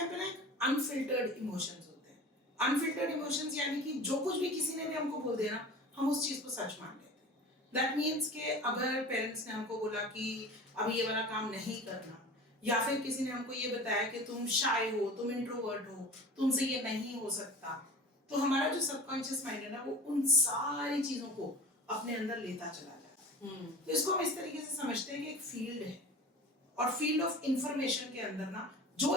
पे ना एक अनफिल्टर्ड इमोशंस होते हैं। अनफिल्टर्ड इमोशंस यानी कि जो कुछ भी किसी ने भी हमको बोल दिया ना, हम उस चीज को सच मान लेते हैं। दैट मीन्स कि अगर पेरेंट्स ने हमको बोला कि अभी ये वाला काम नहीं करना, या फिर किसी ने हमको ये बताया कि तुम शाय हो, तुम इंट्रोवर्ट हो, तुमसे ये नहीं हो सकता, तो हमारा जो सबकॉन्शियस माइंड है ना, वो उन सारी चीजों को अपने अंदर लेता चला जाता है। तो इसको हम इस तरीके से समझते हैं कि एक फील्ड है, और फील्ड ऑफ इंफॉर्मेशन के अंदर ना जो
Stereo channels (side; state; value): both; normal; correlation 0.37